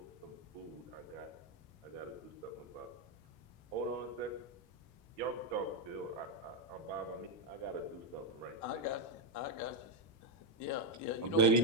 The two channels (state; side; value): normal; both; correlation 0.03